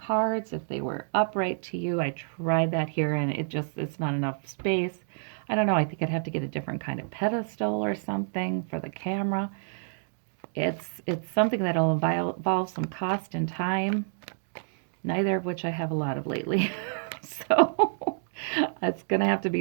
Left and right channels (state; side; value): silent; left; digital silence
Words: if they were upright to you. I tried that here, and it's not enough space. I don't know, I think I'd have to get a different kind of pedestal or something for the camera. It's something that'll involve some cost and time, neither of which I have a lot of lately. So it's going to have to